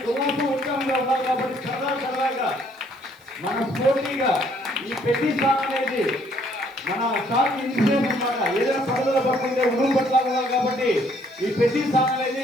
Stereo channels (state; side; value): noise; right; hiss, 30 dB below the sound